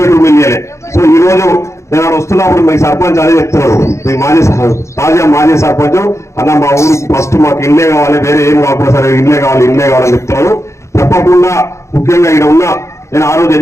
ఇల్లు ఇవ్వలే. సో ఈ రోజు నేను వస్తున్నప్పుడు మీ సర్పంచ్ అదే చెప్తున్నారు, మీ తాజా మాజీ సర్పంచ్ అన్న మా ఊరికి ఫస్ట్ మాకు ఇల్లే కావాలి, వేరే ఏం కాకపోతే సరే ఇల్లే కావాలని చెప్తున్నారు. తప్పకుండా ముఖ్యంగా ఇక్కడ ఉన్న నేను ఆ రోజు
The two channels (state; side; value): late; right; 0.14 ms